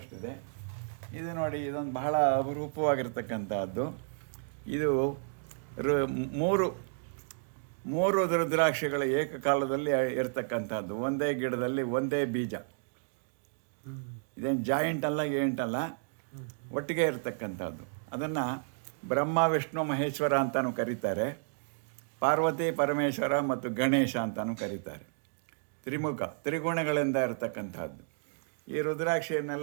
ಇದು ನೋಡಿ, ಇದೊಂದು ಬಹಳ ಅಪರೂಪವಾಗಿರ್ತಕ್ಕಂಥದ್ದು. ಇದು ಮೂರು ರುದ್ರಾಕ್ಷಿಗಳ ಏಕಕಾಲದಲ್ಲಿ ಇರ್ತಕ್ಕಂಥದ್ದು. ಒಂದೇ ಗಿಡದಲ್ಲಿ ಒಂದೇ ಬೀಜ. ಇದೇನು ಜಾಯಿಂಟ್ ಅಲ್ಲ, ಏಂಟಲ್ಲ, ಒಟ್ಟಿಗೆ ಇರ್ತಕ್ಕಂಥದ್ದು. ಅದನ್ನು ಬ್ರಹ್ಮ, ವಿಷ್ಣು, ಮಹೇಶ್ವರ ಅಂತಲೂ ಕರೀತಾರೆ. ಪಾರ್ವತಿ, ಪರಮೇಶ್ವರ ಮತ್ತು ಗಣೇಶ ಅಂತಲೂ ಕರೀತಾರೆ. ತ್ರಿಮುಖ, ತ್ರಿಗುಣಗಳಿಂದ ಇರತಕ್ಕಂಥದ್ದು. ಈ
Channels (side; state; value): left; silent; digital silence